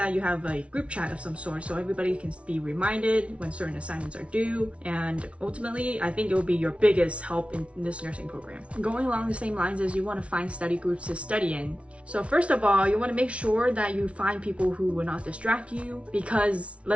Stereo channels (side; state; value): left; late; 0.062 ms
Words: you have a group chat of some sort so everybody can be reminded when certain assignments are due. And ultimately, I think it will be your biggest help in this nursing program. Going along the same lines as you want to find study groups to study in. So first of all, you want to make sure that you find people who will not distract you, because